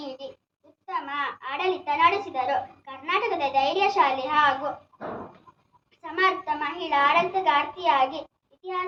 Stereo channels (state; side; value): identical; both; correlation 1.00